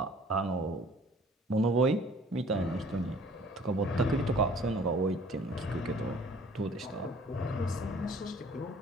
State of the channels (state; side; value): normal; both; correlation 0.53